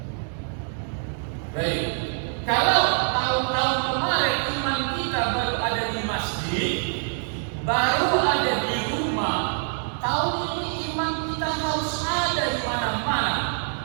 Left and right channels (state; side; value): silent; left; 59 dB below the other